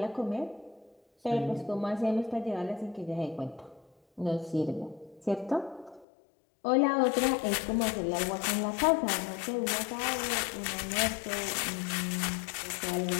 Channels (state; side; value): drops out; right; at 6.1 s